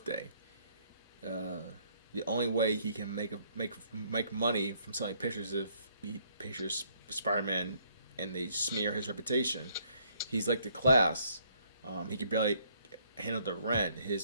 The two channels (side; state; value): both; inverted; correlation -0.66